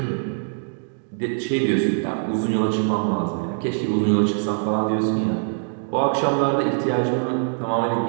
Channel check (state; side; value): silent; left; digital silence